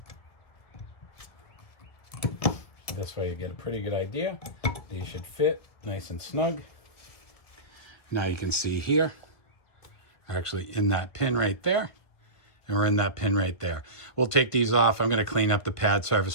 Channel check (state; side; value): late; right; 1.5 ms